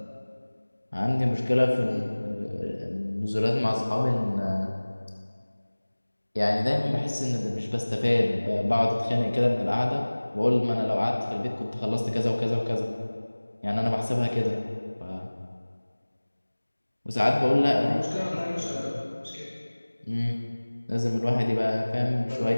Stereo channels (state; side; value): inverted; both; correlation -1.00